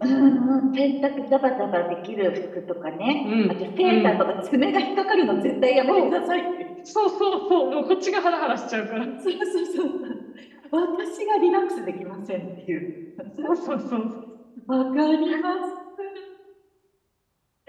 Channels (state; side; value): identical; both; correlation 1.00